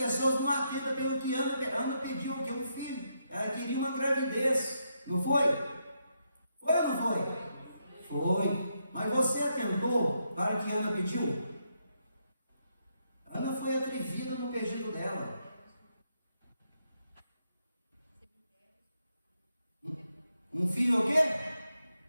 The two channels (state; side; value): inverted; both; correlation -0.80